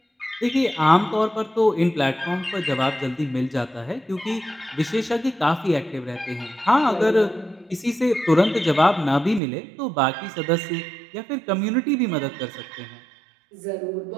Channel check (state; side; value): drops out; left; at 9.4 s